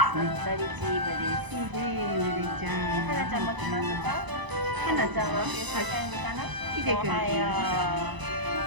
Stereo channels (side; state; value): left; late; 1.0 ms